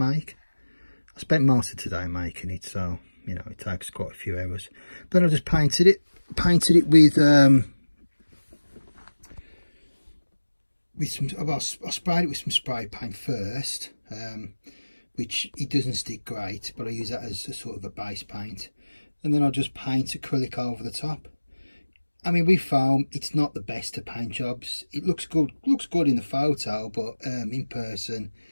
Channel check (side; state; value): both; inverted; correlation -1.00